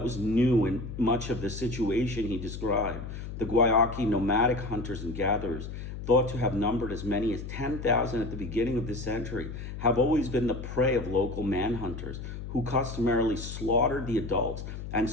was new in much of the situation he described. The Guayaki nomadic hunters and gatherers, thought to have numbered as many as 10,000 at the beginning of this century, have always been the prey of local manhunters who customarily slaughtered the adults and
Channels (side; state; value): left; noise; hum, 8 dB below the sound